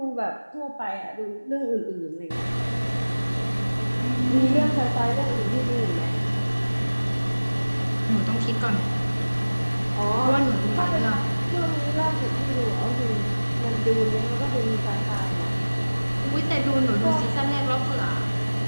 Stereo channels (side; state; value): both; inverted; correlation -1.00